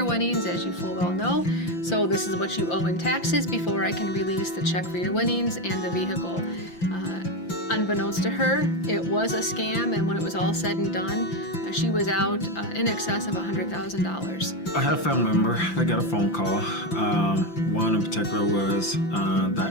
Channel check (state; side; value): late; right; 5.9 ms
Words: winnings, as you full well know. So this is what you owe in taxes before I can release the check for your winnings and the vehicle. Unbeknownst to her, it was a scam, and when it was all said and done, she was out in excess of $100,000. I had a family member that got a phone call. One in particular was